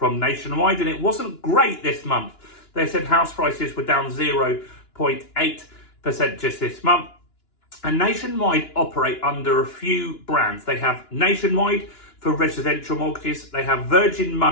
Nationwide, and it wasn't great this month. They said house prices were down 0.8% just this month. And Nationwide operate under a few brands. They have Nationwide for residential mortgages. They have Virgin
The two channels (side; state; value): right; late; 2.9 ms